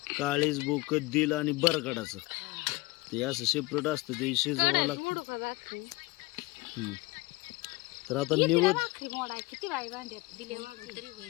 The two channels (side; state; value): right; quieter; 22.4 dB